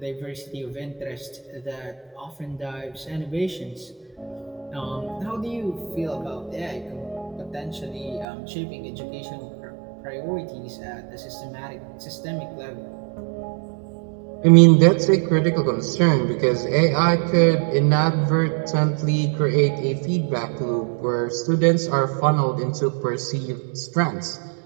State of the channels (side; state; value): left; drops out; at 8.2 s